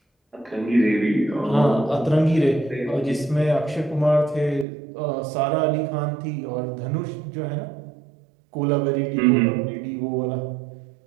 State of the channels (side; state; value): left; drops out; at 4.7 s